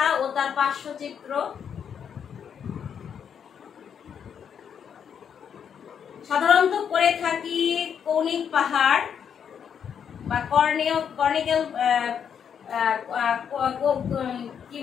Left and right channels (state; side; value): quieter; right; 7.8 dB